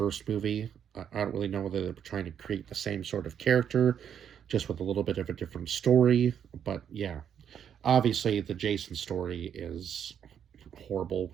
movie. I don't really know whether they were trying to create the same sort of character, just with a little bit of a different story. But yeah, obviously the Jason story is horrible.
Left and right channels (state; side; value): quieter; left; 8.6 dB